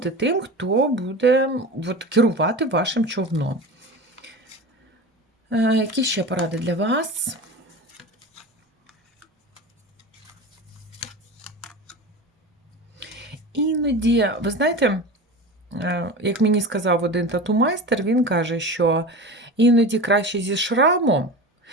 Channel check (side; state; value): both; normal; correlation 0.30